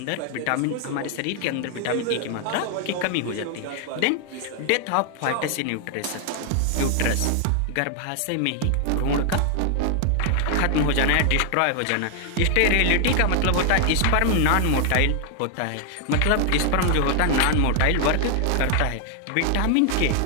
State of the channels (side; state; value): both; different; correlation 0.00